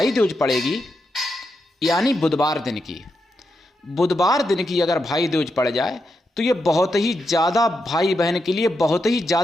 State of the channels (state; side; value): normal; both; correlation 0.85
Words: दूज पड़ेगी, यानी बुधवार दिन की अगर भाई दूज पड़ जाए तो ये बहुत ही ज़्यादा भाई बहन के लिए बहुत ही